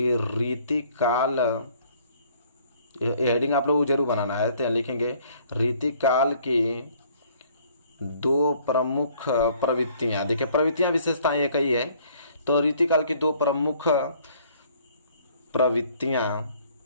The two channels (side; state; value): both; inverted; correlation -0.59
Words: रीतिकाल, हेडिंग आप लोगों को जरूर बनाना है। तो लिखेंगे रीतिकाल की दो प्रमुख प्रवृत्तियां। देखिए प्रवृत्तियां विशेषताएं एक ही है, तो रीतिकाल की दो प्रमुख प्रवृत्तियां